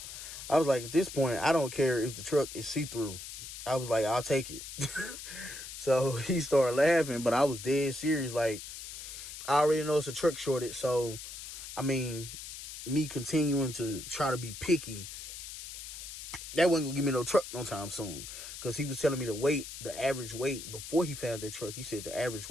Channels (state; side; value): noise; left; hiss, 10 dB below the sound